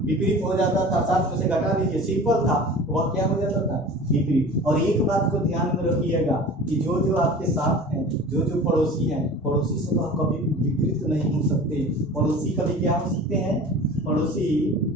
हो जाता था। 7 में से घटा दीजिए, सिंपल था, वह क्या हो जाता था? विपरीत। और एक बात को ध्यान में रखिएगा कि जो आपके साथ हैं, जो पड़ोसी हैं, पड़ोसी से तो कभी विपरीत नहीं हो सकते। पड़ोसी कभी क्या हो सकते हैं? पड़ोसी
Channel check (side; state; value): both; normal; correlation 0.39